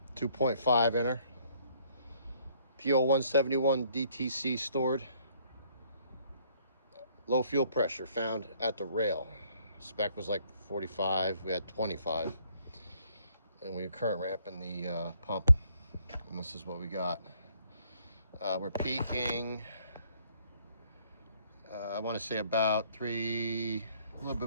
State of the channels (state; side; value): inverted; both; correlation -0.64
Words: 2.5 inner. P0171 DTC stored. Low fuel pressure found at the rail. Spec was like 45. We had 25. And we are current ramping the pump. And this is what we got. We're peaking, I want to say about a little